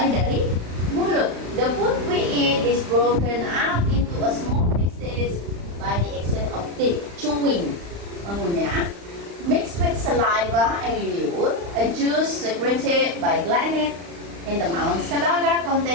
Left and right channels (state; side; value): late; left; 35 ms